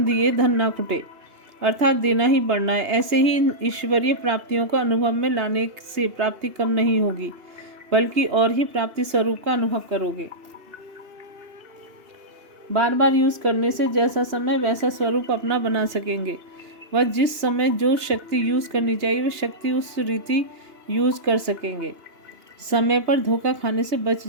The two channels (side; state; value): left; late; 2.9 ms